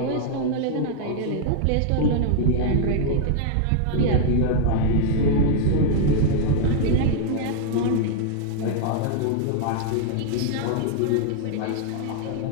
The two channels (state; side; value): different; both; correlation -0.01